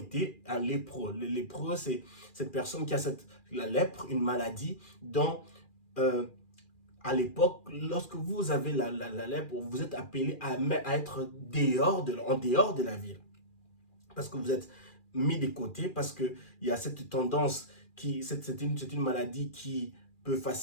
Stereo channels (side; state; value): right; late; 2.4 ms